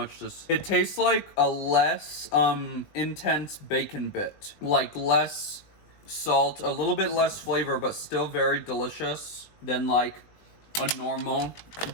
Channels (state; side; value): late; right; 20 ms